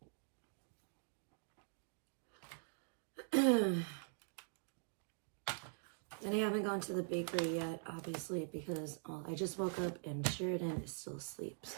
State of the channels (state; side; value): silent; left; digital silence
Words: And I haven't gone to the bakery yet, obviously, because I just woke up and Sheridan is still asleep,